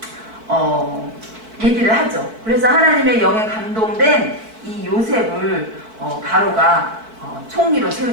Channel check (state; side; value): late; left; 4.5 ms